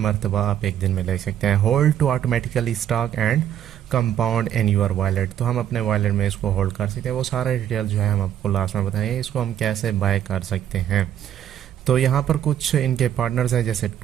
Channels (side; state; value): left; quieter; 10.5 dB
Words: आप एक दिन में ले सकते हैं। Hold to automatically stock and compound in your wallet, तो हम अपने वॉलेट में इसको होल्ड कर सकते हैं। वो सारा डिटेल जो है हम आपको लास्ट में बताएंगे, इसको हम कैसे बाय कर सकते हैं। तो यहाँ पर कुछ इनके पार्टनर्स हैं, जैसे